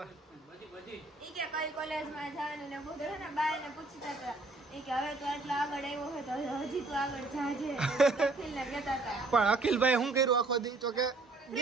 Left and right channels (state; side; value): quieter; left; 3.2 dB